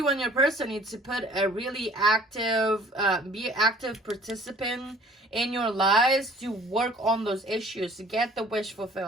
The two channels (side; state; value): both; normal; correlation 0.53